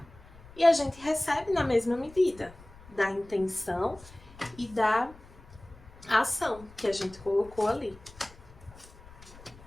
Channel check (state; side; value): noise; left; rumble, 21 dB below the sound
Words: e a gente recebe na mesma medida da intenção e da ação que a gente colocou ali.